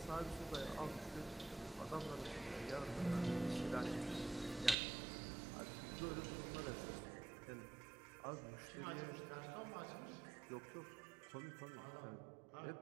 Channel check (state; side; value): drops out; left; at 4.8 s